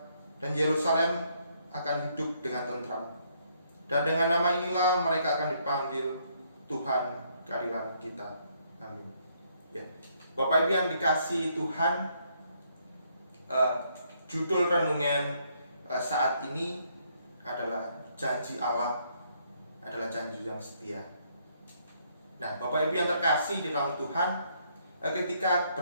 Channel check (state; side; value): inverted; both; correlation -0.71